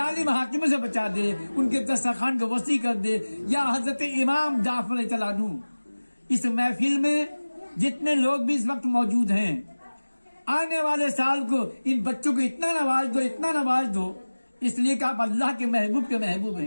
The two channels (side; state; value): both; inverted; correlation -1.00